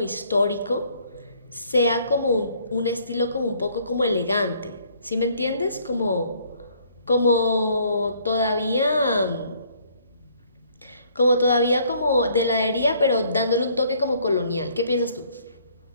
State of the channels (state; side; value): inverted; both; correlation -0.63